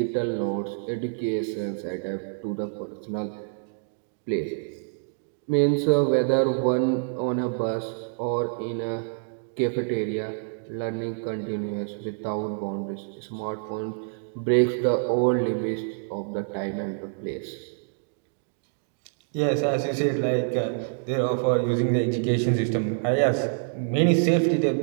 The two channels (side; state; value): left; silent; digital silence